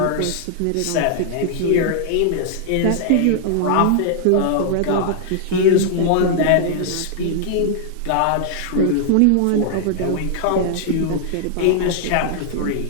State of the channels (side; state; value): both; different; correlation -0.01